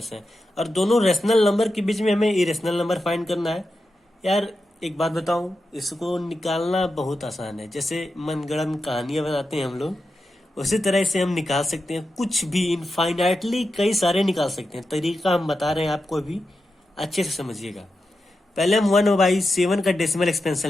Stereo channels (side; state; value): both; normal; correlation 0.89